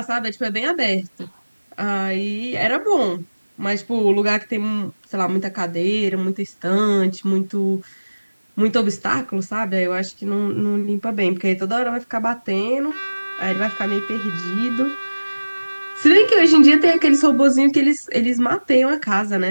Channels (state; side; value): inverted; both; correlation -1.00